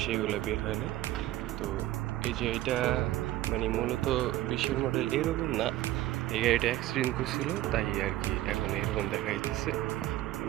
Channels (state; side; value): quieter; left; 15.2 dB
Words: এগুলো বের হয় না। তো এটা মূলত 20-এর মডেল এরকম না, এই গাড়িটা অ্যাক্সিডেন্ট করছিল তাই আর কি এখন এরকম দেখা যাইতেছে।